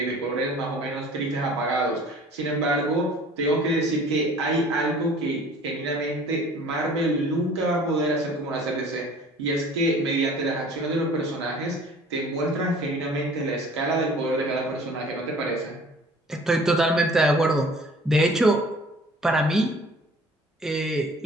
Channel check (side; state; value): both; normal; correlation 0.49